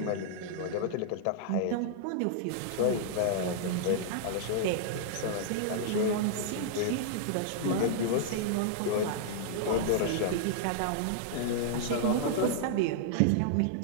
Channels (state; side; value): different; both; correlation -0.01